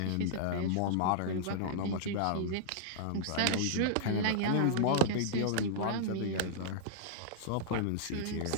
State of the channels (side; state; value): both; different; correlation -0.02